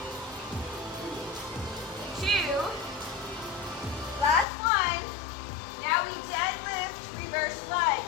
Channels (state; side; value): drops out; right; at 4.5 s